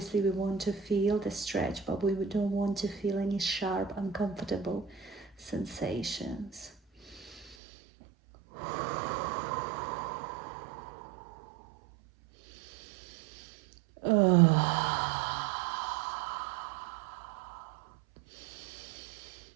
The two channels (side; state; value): left; drops out; at 7.6 s